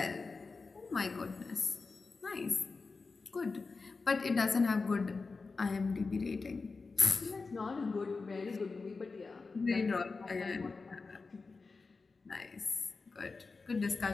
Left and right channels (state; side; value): quieter; right; 4.2 dB